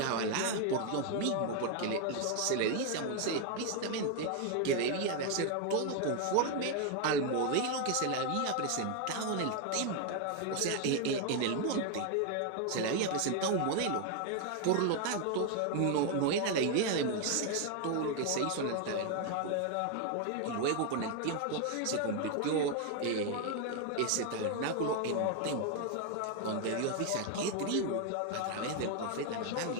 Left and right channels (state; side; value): different; both; correlation 0.01